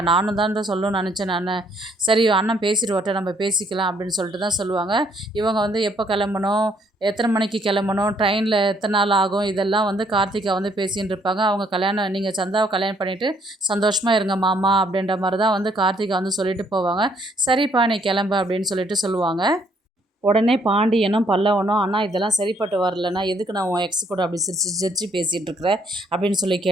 நானும் தான் சொல்லணும்னு நினச்சேன் நான், சரி அண்ணன் பேசிட்டு வரட்ட நம்ம பேசிக்கலாம் அப்படின்னு சொல்லிட்டு தான் சொல்லுவாங்க. இவங்க வந்து எப்போ கிளம்பணும், எத்தனை மணிக்கு கிளம்பணும், ட்ரெயினில் எத்தனை நாள் ஆகும், இதெல்லாம் வந்து கார்த்திகா வந்து பேசின்னு இருப்பாங்க. அவங்க கல்யாணம், நீங்கள் சந்தாவை கல்யாணம் பண்ணிவிட்டு சந்தோஷமாக இருங்க மாமா அப்படின்ற மாதிரி தான் வந்து கார்த்திகா வந்து சொல்லிட்டு போவாங்க. சரிப்பா நீ கிளம்பு அப்படின்னு சொல்லிட்டு சொல்லுவாங்க. உடனே பாண்டியனும் பல்லவனும், அண்ணா இதெல்லாம் சரிப்பட்டு வரலண்ணா, எதுக்கு நான் உன் எக்ஸ் கூட அப்படி சிரித்து பேசிகிட்டு இருக்கிறேன் அப்படின்னு சொல்லி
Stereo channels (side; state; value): both; normal; correlation 0.67